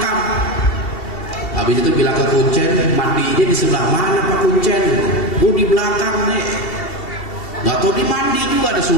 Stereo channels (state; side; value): late; right; 2.7 ms